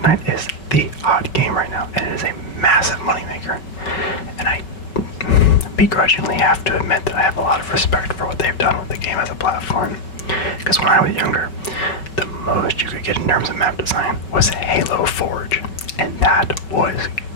is the hot game right now, and it is a massive moneymaker. And begrudgingly have to admit that I have a lot of respect for what they've done with the game as a platform. Because when I was younger, the most you could get in terms of map design was Halo Forge, and that was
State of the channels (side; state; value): right; late; 5.3 ms